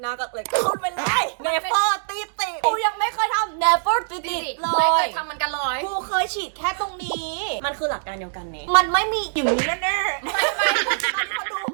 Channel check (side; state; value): left; silent; digital silence